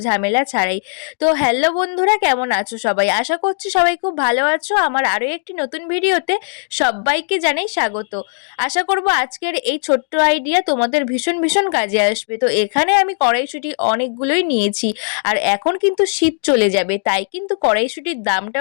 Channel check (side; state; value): right; silent; 68 dB below the other